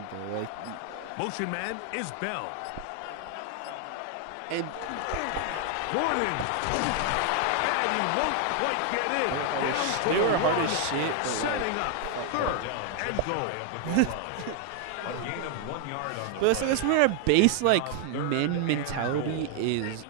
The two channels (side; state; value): both; different; correlation 0.00